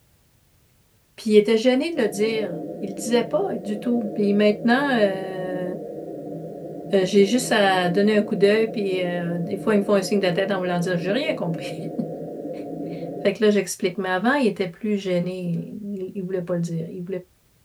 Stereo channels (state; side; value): identical; both; correlation 1.00